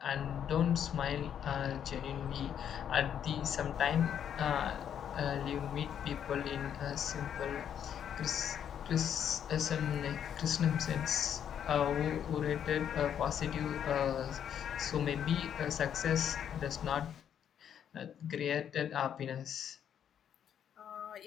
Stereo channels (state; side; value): quieter; right; 9.0 dB